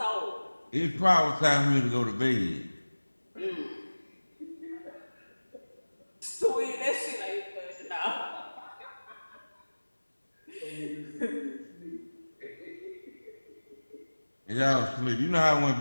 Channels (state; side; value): inverted; both; correlation -1.00